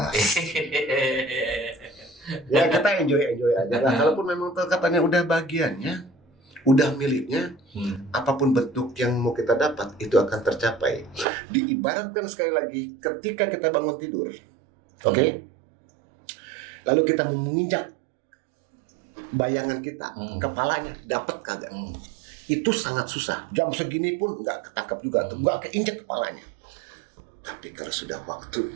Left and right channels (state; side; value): drops out; left; at 11.2 s